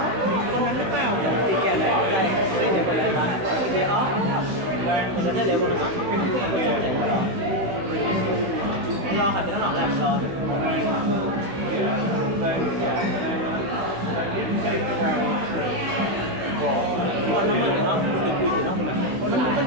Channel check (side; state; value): left; late; 16 ms